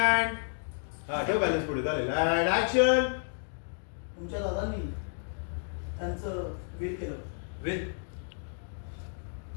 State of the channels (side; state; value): right; silent; digital silence